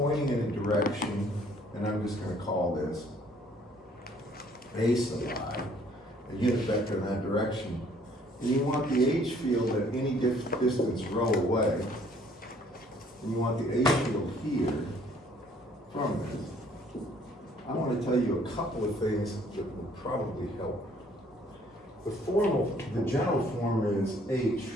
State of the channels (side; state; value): both; normal; correlation 0.60